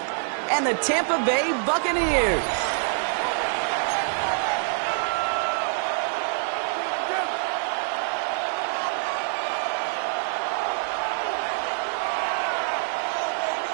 and the Tampa Bay Buccaneers.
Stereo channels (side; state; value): left; silent; 55 dB below the other